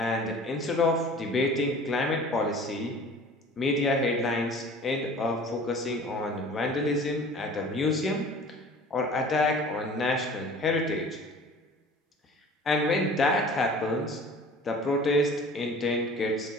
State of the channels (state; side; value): normal; both; correlation 0.45